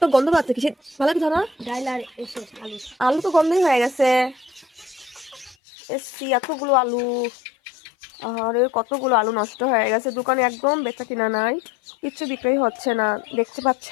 গন্ধ পাচ্ছে কিসে, ভালো কি ধরো। আলু তো গন্ধই হয়ে গেছে। এসছি এতগুলো আলু, আর কতগুলো আলু নষ্ট হয়ে গেছে। দোকানে একদম বেচা কিনা নাই, কিচ্ছু বিক্রি হচ্ছে না। দেখতে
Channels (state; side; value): drops out; right; at 5.6 s